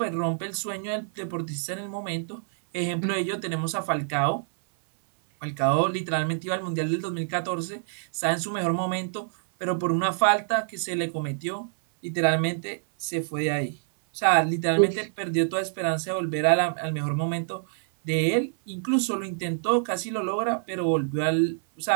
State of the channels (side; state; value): left; silent; 59 dB below the other